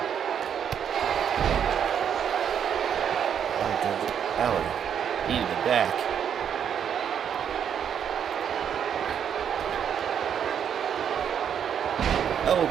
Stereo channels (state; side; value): quieter; left; 8.4 dB